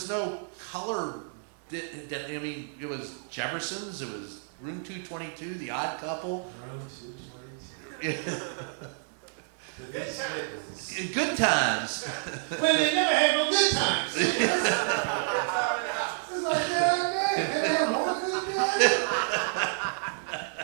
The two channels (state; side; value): silent; left; digital silence